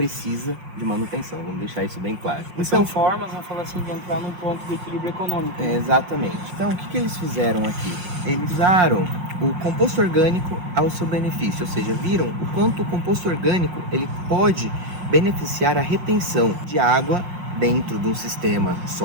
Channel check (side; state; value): left; late; 5.6 ms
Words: de manutenção, vamos deixar isso bem claro. Então, são formas, vamos falar assim, de entrar num ponto de equilíbrio econômico. Né? Exatamente. Então, o que eles fizeram aqui? Eles usaram o composto orgânico ao seu benefício, ou seja, viram o quanto o composto orgânico ele pode beneficiar a retenção de água dentro de um sistema